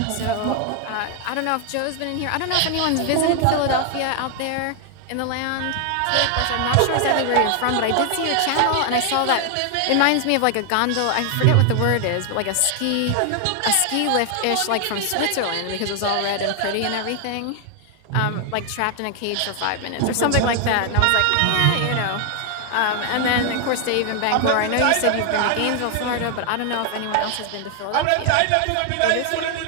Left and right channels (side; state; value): both; different; correlation 0.00